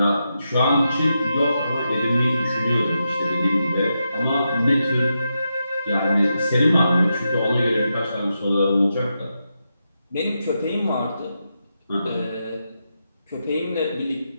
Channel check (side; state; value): both; inverted; correlation -0.86